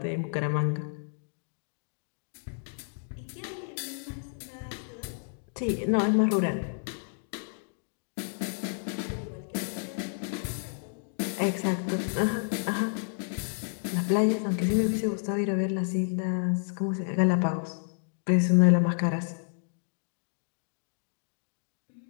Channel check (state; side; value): silent; right; digital silence